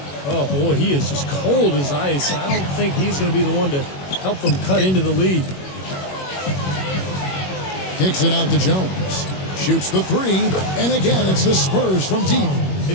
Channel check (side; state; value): right; late; 21 ms